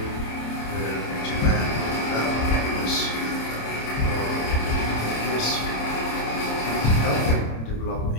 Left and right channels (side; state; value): right; late; 27 ms